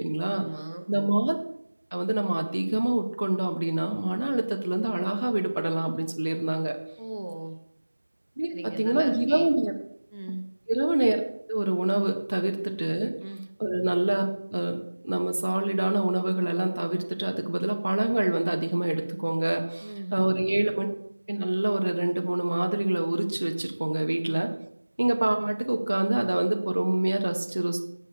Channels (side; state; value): both; inverted; correlation -1.00